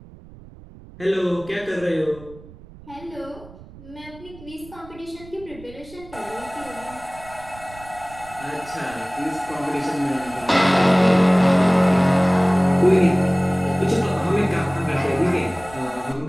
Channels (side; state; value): right; noise; rumble, 20 dB below the sound